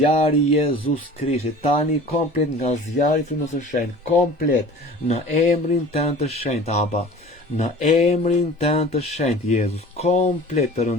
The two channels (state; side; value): normal; both; correlation 0.43